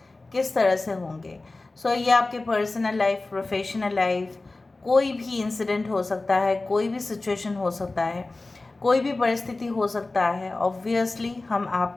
किस तरह से होंगे। ये आपके पर्सनल लाइफ, प्रोफेशनल लाइफ, कोई भी इंसिडेंट हो सकता है, कोई भी सिचुएशन हो सकता है, कोई भी परिस्थिति हो सकता है। ऑब्वियसली हम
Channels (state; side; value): quieter; right; 3.2 dB